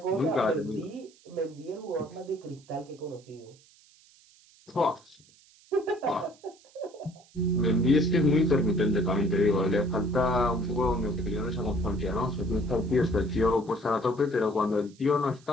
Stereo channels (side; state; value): right; noise; hiss, 28 dB below the sound